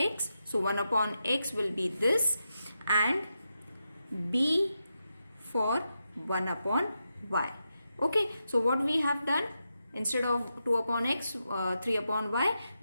So 1 upon x will be this, and b for 1 upon y. Okay, so what we have done, instead of 2 upon x, 3 upon y,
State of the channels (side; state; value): both; inverted; correlation -0.87